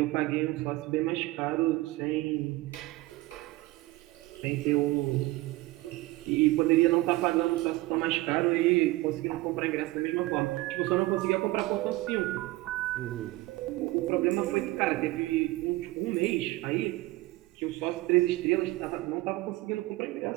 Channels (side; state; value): left; quieter; 19.6 dB